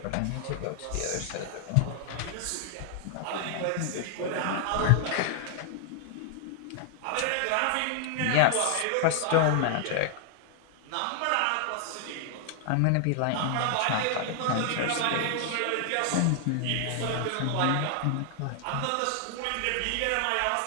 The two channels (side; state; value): both; different; correlation 0.00